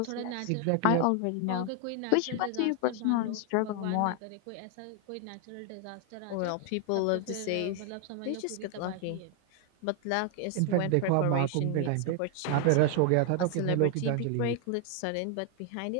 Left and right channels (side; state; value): both; different; correlation 0.00